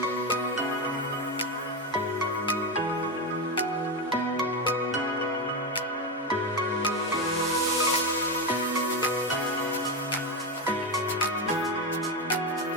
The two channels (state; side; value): normal; both; correlation 0.13